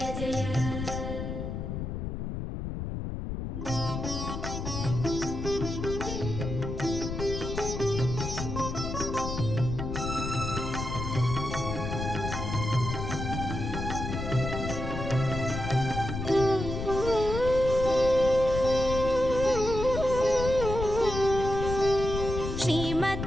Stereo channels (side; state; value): left; noise; rumble, 5 dB below the sound